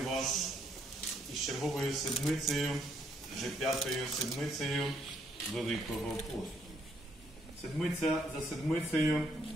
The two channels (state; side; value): normal; both; correlation 0.71